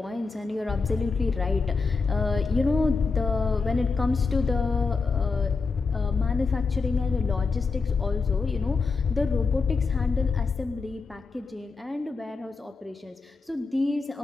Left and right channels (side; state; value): right; quieter; 4.4 dB